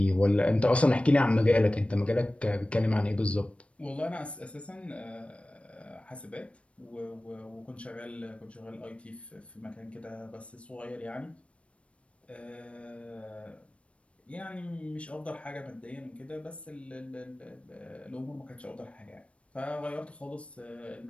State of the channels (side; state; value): right; late; 0.061 ms